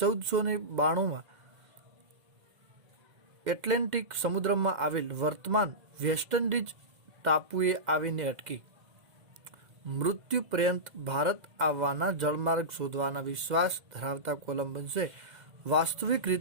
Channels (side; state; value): left; late; 2.0 ms